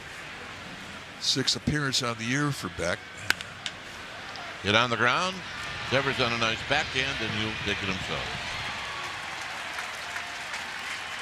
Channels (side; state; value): both; identical; correlation 1.00